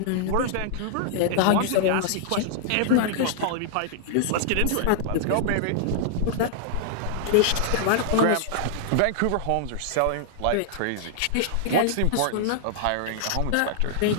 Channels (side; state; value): both; different; correlation -0.01